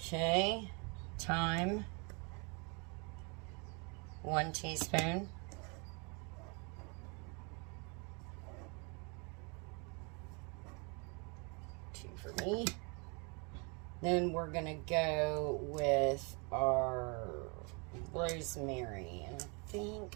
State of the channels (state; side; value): quieter; left; 32.8 dB